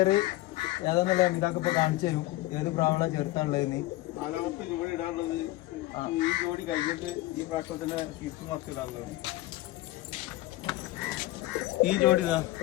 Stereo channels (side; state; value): right; quieter; 17.7 dB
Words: ഏതാന്നുള്ള ഇതാക്കി ഇപ്പൊ കാണിച്ചു തരും. ഏത് പ്രാവള ചേർത്താനുള്ളതെന്ന്. 4ാമത്തെ ജോഡി ഇടാനുള്ളത് ഈ ജോഡി കഴിഞ്ഞിട്ട് ഈ പ്രാവശ്യം തന്നെ സ്വിച്ച് മാസ്ക് ഇടാനുള്ളത്. ഈ ജോഡി ഇതാ